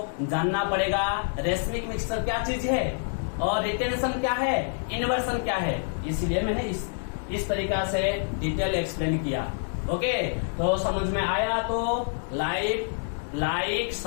जानना पड़ेगा रेशमिक मिक्सर क्या चीज है और रिटेंशन क्या है, इन्वर्सन क्या है। इसलिए मैंने इस तरीका से डिटेल एक्सप्लेन किया। ओके, तो समझ में आया तो लाइक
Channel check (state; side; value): silent; right; digital silence